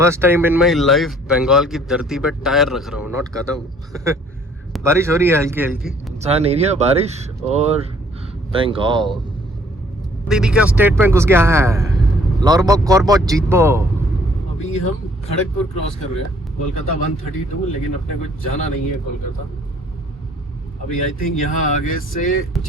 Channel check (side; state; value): both; normal; correlation 0.60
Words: time in my life Bengal की धरती पे टायर रख रहा हूँ, नॉट कदम। बारिश हो रही है हल्की हल्की, इंसान एरिया बारिश और बंगाल। दीदी का स्टेट बैंक घुस गया है, लॉर्बो कॉर्बो जीतबो। अभी हम खड़गपुर क्रॉस कर रहे हैं, कोलकाता 132, लेकिन अपने को जाना नहीं है कोलकाता अभी। आई थिंक यहाँ आगे से